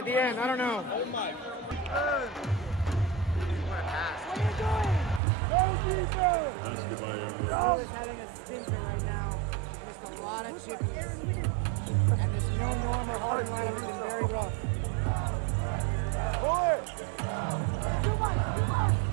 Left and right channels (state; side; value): drops out; left; at 5.2 s